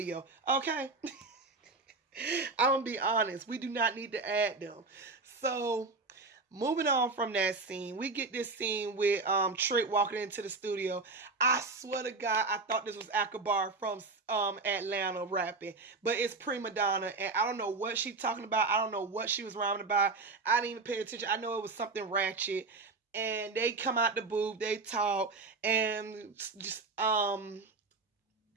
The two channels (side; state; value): left; quieter; 3.8 dB